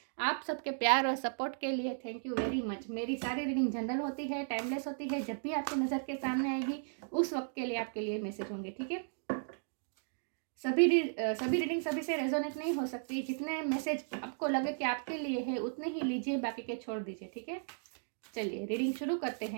आप सबके प्यार और सपोर्ट के लिए थैंक यू वेरी मच। मेरी सारी रीडिंग जनरल होती है, टाइमलेस होती है। जब भी आपकी नज़र के सामने आएगी उस वक्त के लिए आपके लिए मैसेज होंगे, ठीक है। सभी रीडिंग सभी से रेजोनेट नहीं हो सकती। जितने मैसेज आपको लगे कि आपके लिए है उतने ही लीजिए, बाकी के छोड़ दीजिए, ठीक है। चलिए रीडिंग शुरू करते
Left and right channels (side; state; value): left; silent; digital silence